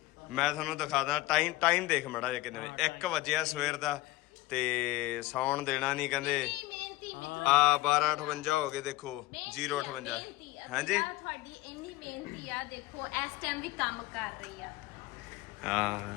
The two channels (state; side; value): quieter; right; 18.0 dB